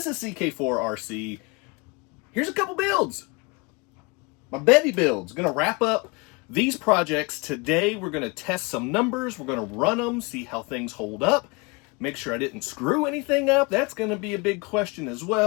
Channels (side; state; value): right; quieter; 27.6 dB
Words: is CK4RC. Here's a couple builds. My Betty builds. Gonna wrap up these projects today. We're gonna test some numbers. We're gonna run them, see how things hold up. Make sure I didn't screw anything up. That's gonna be a big question as